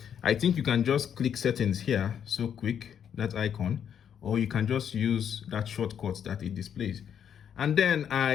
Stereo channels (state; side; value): quieter; right; 8.5 dB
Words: I think you can just click settings here, so quick, that icon, or you can just use that shortcut that it displays. And then